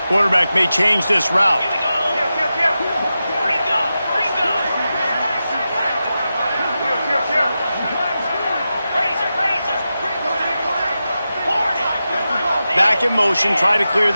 Quarterback may change this route. Back in motion, try to clear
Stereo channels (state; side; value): inverted; both; correlation -0.91